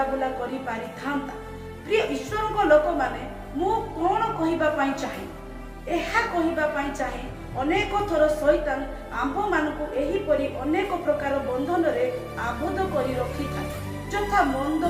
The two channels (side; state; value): both; identical; correlation 1.00